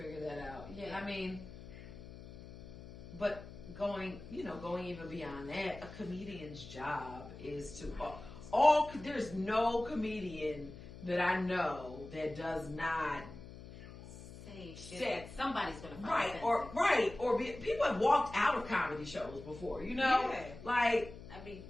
that out. Yeah, I mean, but going even beyond that, a comedian's job is to there's no comedian that I know that does not say shit. Somebody's gonna find people have walked out of comedy shows before, like, I mean,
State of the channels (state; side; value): noise; left; hum, 15 dB below the sound